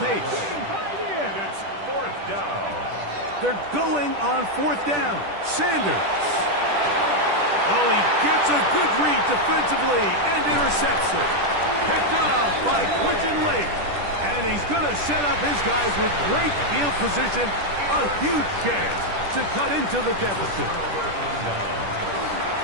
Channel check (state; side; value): late; left; 10 ms